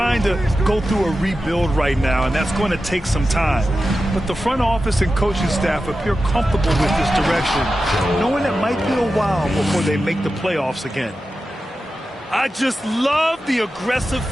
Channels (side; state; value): both; normal; correlation 0.92